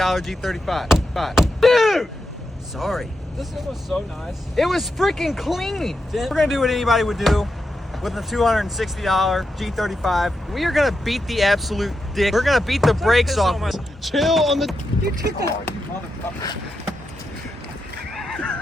Dude! Sorry. This thing was so nice. It was freaking clean. We're gonna do what anybody would do with a $260 G35. We are gonna beat the absolute dick. We're gonna beat the brakes off. Chill on the. You took the.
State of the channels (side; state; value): both; normal; correlation 0.87